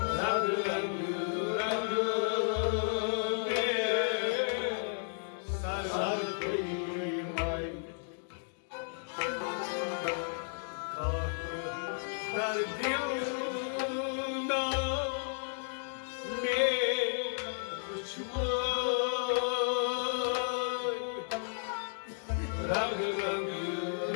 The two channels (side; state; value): right; silent; digital silence